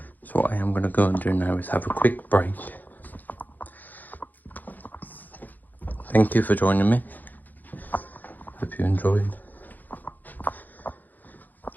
So what I am going to go and do now is have a quick break. Thank you for joining me. Hope you enjoyed.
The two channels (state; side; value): late; right; 0.084 ms